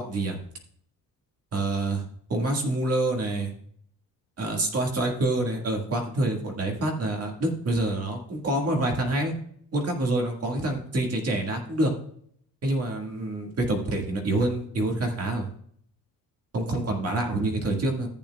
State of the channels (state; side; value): normal; both; correlation 0.56